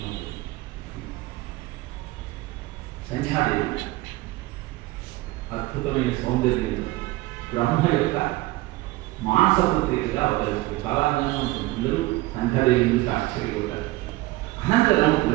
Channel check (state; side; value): quieter; left; 19.5 dB